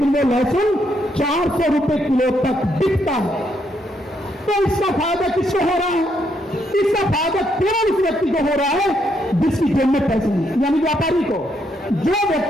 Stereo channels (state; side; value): normal; both; correlation 0.75